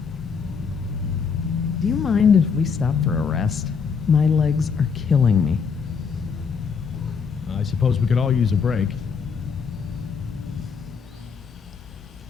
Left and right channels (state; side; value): quieter; right; 5.9 dB